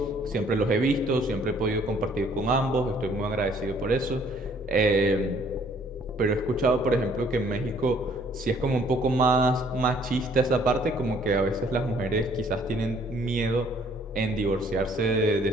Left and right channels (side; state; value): both; normal; correlation 0.61